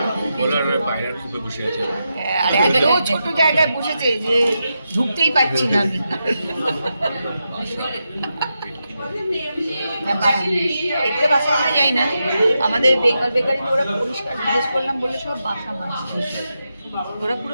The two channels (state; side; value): inverted; both; correlation -0.87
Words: বলার পায়রার খুব বসে আছে। আর এত ছোট জায়গায় বসেছে যে ঢুকতেই পাচ্ছি না আমি। এগুলো বাসা আমরা যাই না, আমাদের বেঙ্গল বেকারিতে ওরা পরিষ্কার জিজ্ঞেস করলাম বলে সব বাসা মাছ, ওরা